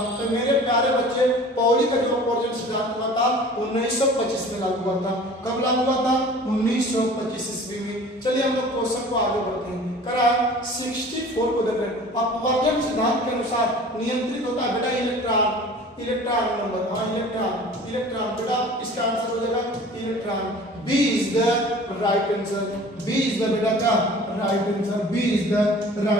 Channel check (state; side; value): normal; both; correlation 0.44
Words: तो मेरे प्यारे बच्चे पॉली का जो अपवर्जन सिद्धांत हुआ था 1925 में लागू हुआ था। कब लागू हुआ था? 1925 ईस्वी में। चलिए हम लोग क्वेश्चन को आगे बढ़ते हैं। करा 64 को देख रहे हैं। अपवर्जन सिद्धांत के अनुसार नियंत्रित होता है बेटा इलेक्ट्रॉन नंबर, हाँ इलेक्ट्रॉन बेटा इसका आंसर हो जाएगा electron. B is the right answer, B is the बेटा का right answer, B is the